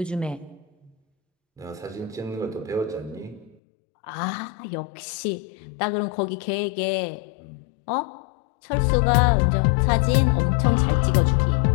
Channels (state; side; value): drops out; right; at 3.6 s